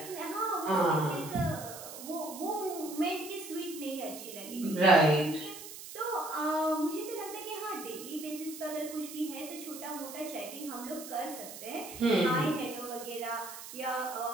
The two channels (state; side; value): noise; right; hiss, 12 dB below the sound